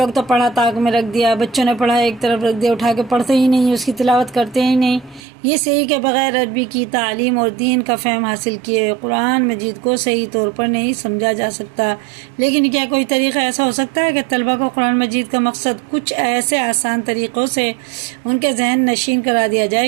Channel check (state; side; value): drops out; left; at 5.2 s